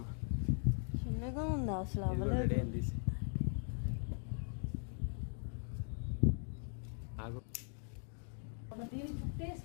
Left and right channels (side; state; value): right; silent; 51 dB below the other